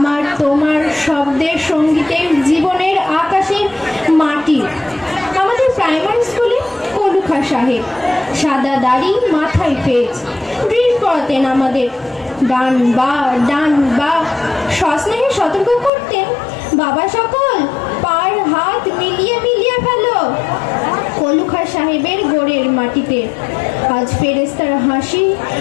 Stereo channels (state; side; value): drops out; right; at 15.9 s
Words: তোমার শব্দের, সঙ্গীতের, জীবনের, আকাশের, মাটি। আমাদের প্রাইমারি স্কুলে কলুখা সাহেব সাদা দাড়ি, মাথায় পেঁচ, ড্রিল পড়াতেন আমাদের। ডান বা সস্নেহে সতর্ক করতেন, বাবা সকল পার হাত মিলিয়ে মিলিয়ে ফেলো। কলুখা সাহেবের গোড়ের মাটিতে আজ ফেরেস্তার হাসি